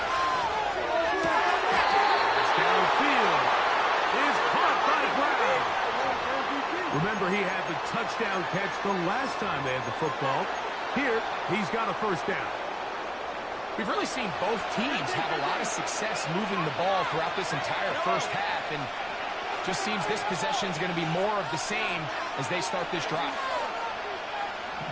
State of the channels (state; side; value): identical; both; correlation 1.00